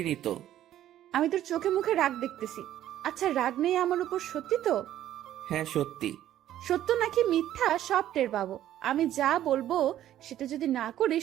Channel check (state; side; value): quieter; left; 12.3 dB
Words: তো। আমি তোর চোখে মুখে রাগ দেখতেছি। আচ্ছা, রাগ নেই আমার উপর, সত্যি তো? হ্যাঁ সত্যি। সত্য নাকি মিথ্যা সব টের পাবো। আমি যা বলবো সেটা যদি না